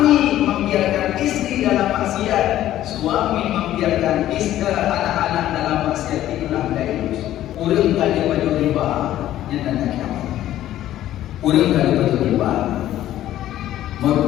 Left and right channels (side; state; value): right; quieter; 13.1 dB